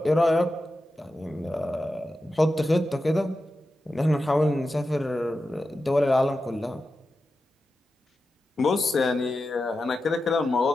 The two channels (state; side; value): normal; both; correlation 0.91